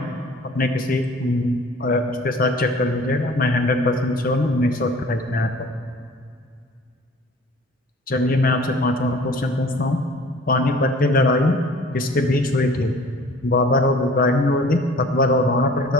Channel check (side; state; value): both; normal; correlation 0.49